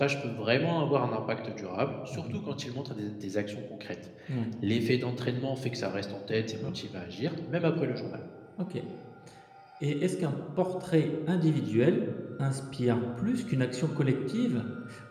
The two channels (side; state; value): both; identical; correlation 1.00